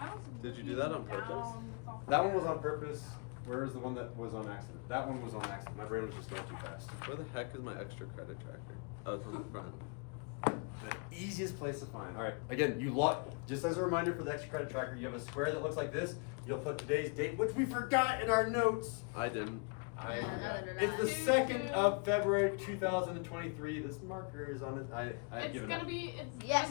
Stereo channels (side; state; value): right; quieter; 34.8 dB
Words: was Did you do that on purpose? down. That one was on purpose. Where's the one that was on accident? That one was on accident. My brain was just going too fast. Where the heck is my extra credit tracker? Oh, it's on the front. The easiest place to find. All right, again, you log, just as a reminder for the extra credit tracker, you have a square that looks like this. You'll put today's date, which we forgot in our notes. I didn't. It's the 2nd of February 2023. This marker is on it. I've It's given gonna up. be. It's Yes,